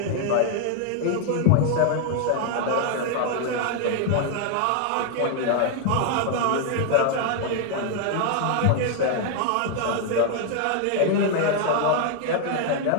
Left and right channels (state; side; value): different; both; correlation 0.00